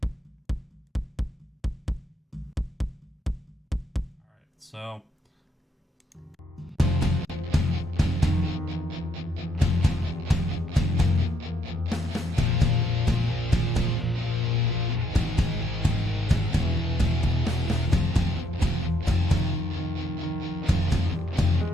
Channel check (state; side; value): normal; both; correlation 0.73